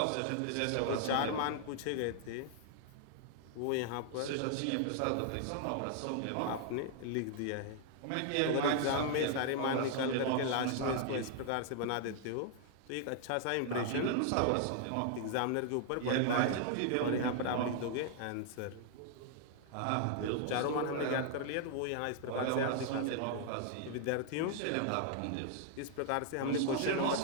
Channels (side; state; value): both; different; correlation 0.00